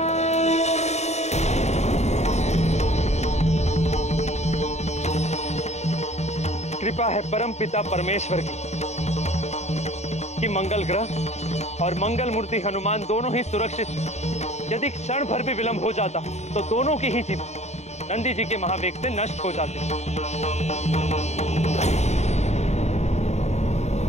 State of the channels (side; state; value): right; late; 0.32 ms